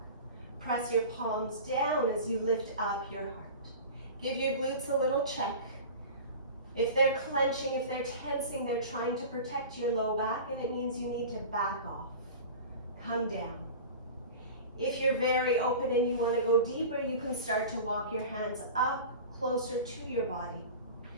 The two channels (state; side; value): inverted; both; correlation -0.35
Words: Press your palms down as you lift up your heart. Give your glutes a little check. If they're clenching, if they're tensing, they're trying to protect your low back, and it means you need to back off. Come down. If you're very open and you want to go deeper, you can start to walk your hands up closer to your body.